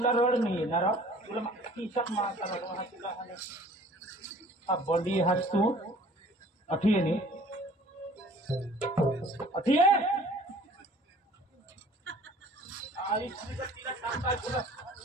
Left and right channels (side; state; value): both; normal; correlation 0.50